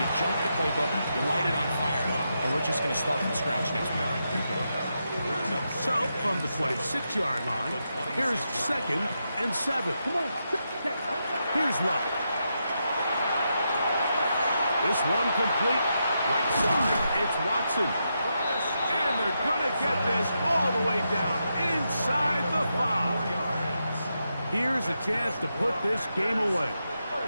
jump the playbook, you light it on fire, and we're just going to start from scratch next week. So, from the 26-yard line, here's 2nd and 7. Here's Love. This one complete. Right side, it's Watson. And they're going to get this all the way down inside the 5. Here's a chance to put this game away.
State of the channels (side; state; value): both; inverted; correlation -0.85